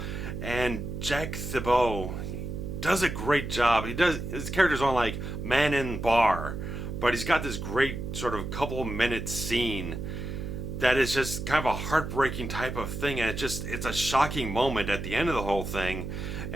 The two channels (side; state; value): right; noise; hum, 6 dB below the sound